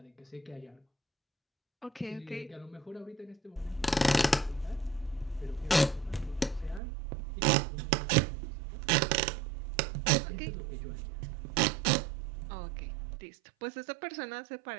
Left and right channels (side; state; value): left; drops out; at 6.8 s